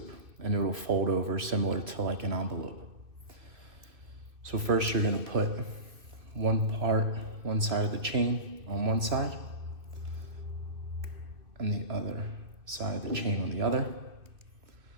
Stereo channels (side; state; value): left; late; 2.6 ms